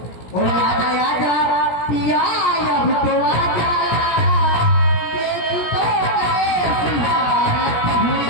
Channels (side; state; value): right; late; 17 ms